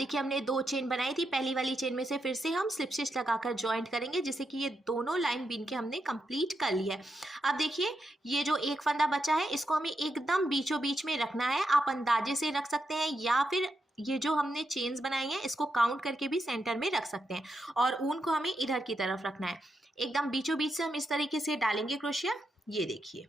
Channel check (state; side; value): normal; both; correlation 0.84